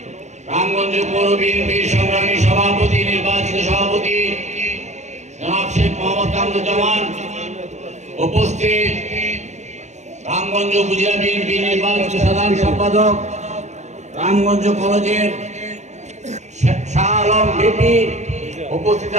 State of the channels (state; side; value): late; left; 0.33 ms